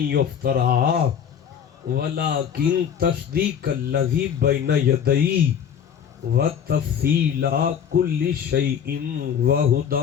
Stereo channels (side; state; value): right; quieter; 8.2 dB